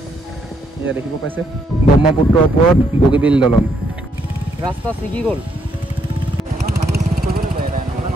এয়া দেখিব পাইছে ব্ৰহ্মপুত্ৰৰ ওপৰত বগীবিল দলং ৰাস্তা ছিগি গ'ল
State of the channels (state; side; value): normal; both; correlation 0.73